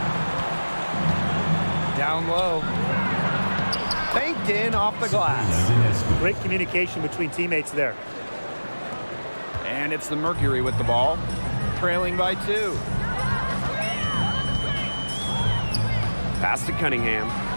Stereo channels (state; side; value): inverted; both; correlation -1.00